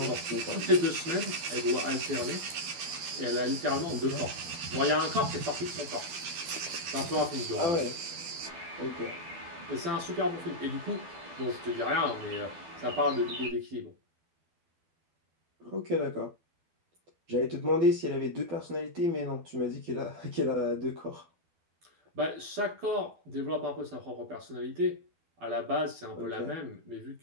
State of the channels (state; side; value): late; left; 12 ms